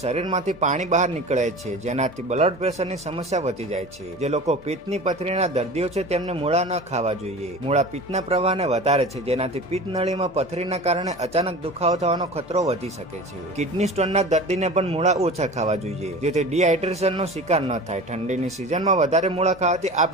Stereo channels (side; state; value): both; normal; correlation 0.36